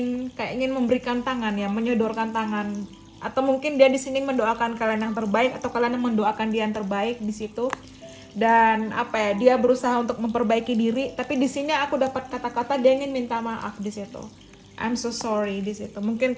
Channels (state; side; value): identical; both; correlation 1.00